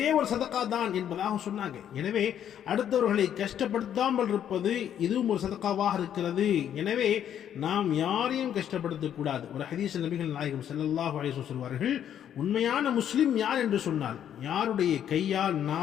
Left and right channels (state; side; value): quieter; right; 9.8 dB